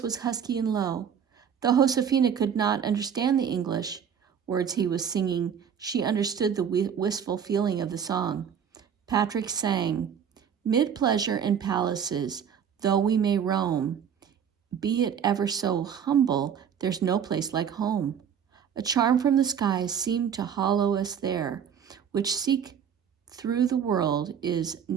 was husky and low. Though Josefina could not understand the English words he was singing, she understood the wistful feeling of the song. Patrick sang, "Mid pleasure and palaces, though we may roam, be it ever so humble, there's no place like home. A charm from the skies seemed to hallow us there, which seek through the world is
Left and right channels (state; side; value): quieter; left; 8.0 dB